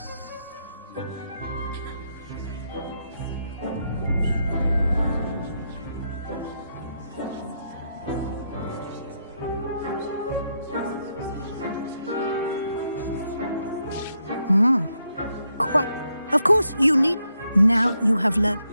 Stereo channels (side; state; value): both; inverted; correlation -0.80